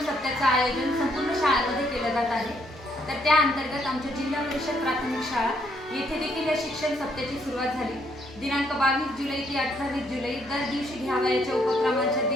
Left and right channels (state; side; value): normal; both; correlation 0.71